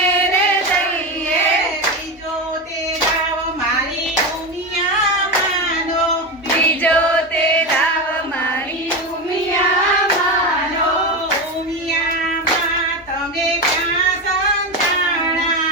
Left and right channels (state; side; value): normal; both; correlation 0.18